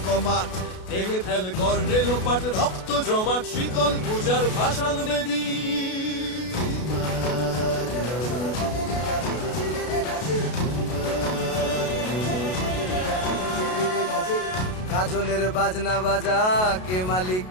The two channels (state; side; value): late; right; 33 ms